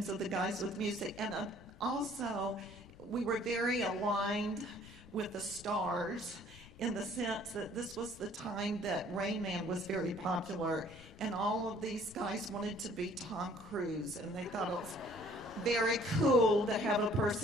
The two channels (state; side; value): noise; left; rumble, 19 dB below the sound